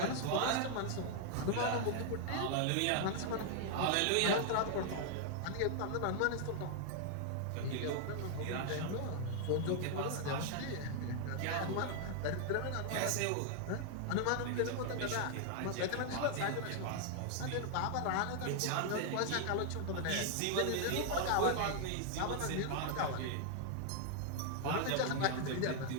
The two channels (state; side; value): different; both; correlation 0.00